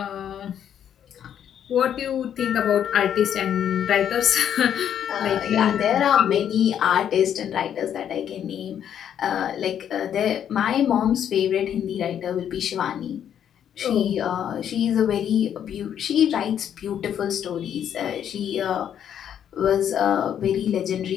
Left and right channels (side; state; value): right; quieter; 9.4 dB